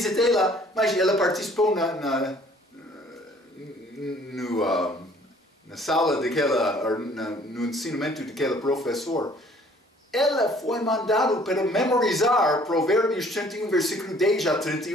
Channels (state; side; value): normal; both; correlation 0.56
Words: lá, mas ela participou na sala no ensinamento daquele professor. Ela foi mandada para memorizar Provérbios 31, versículo 10 a